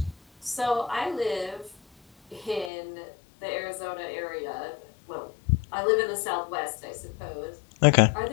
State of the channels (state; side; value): drops out; right; at 2.7 s